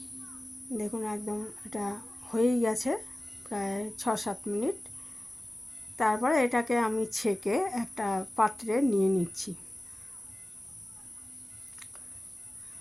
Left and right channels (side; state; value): both; normal; correlation 0.96